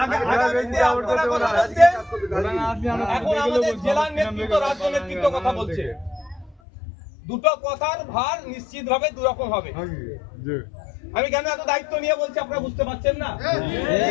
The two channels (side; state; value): right; drops out; at 6.6 s